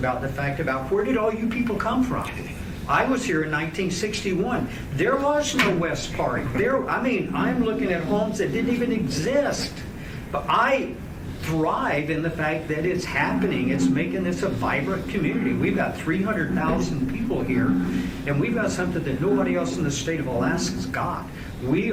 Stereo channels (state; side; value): identical; both; correlation 1.00